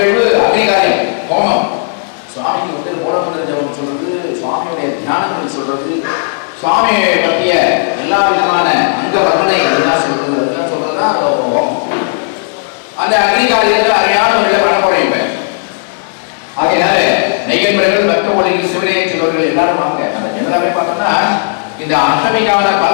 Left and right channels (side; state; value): right; silent; digital silence